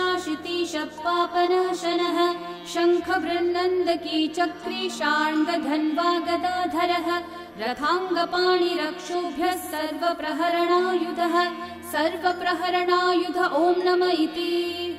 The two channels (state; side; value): identical; both; correlation 1.00